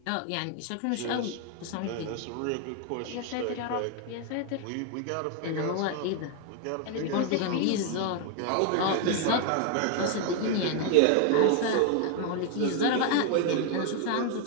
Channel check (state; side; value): different; both; correlation 0.01